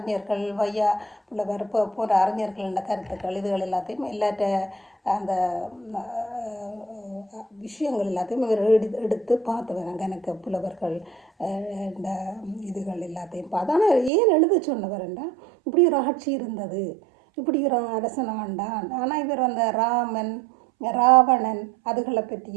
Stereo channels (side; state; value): left; drops out; at 14.1 s